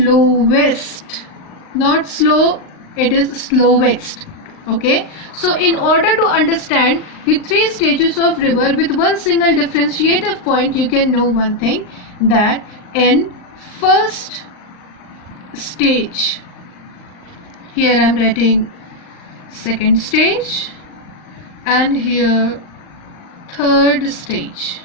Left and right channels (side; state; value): right; late; 39 ms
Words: Not slow, it is slowest. Okay, so in order to understand the three stages of river with one single differentiative point, you can know one thing, that in first stage, here I am writing second stage and here third stage.